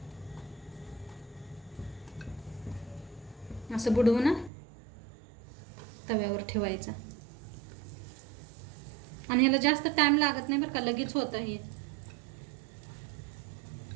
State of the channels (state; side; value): drops out; left; at 4.5 s